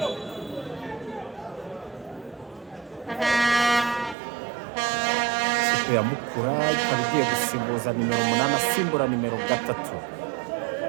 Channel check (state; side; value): drops out; left; at 4.2 s